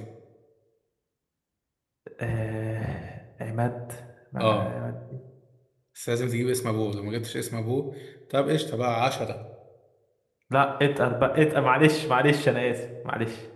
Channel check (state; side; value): identical; both; correlation 1.00